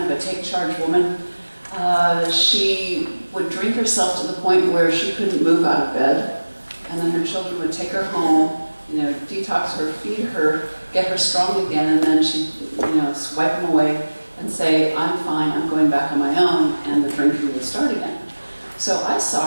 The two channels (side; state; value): both; inverted; correlation -1.00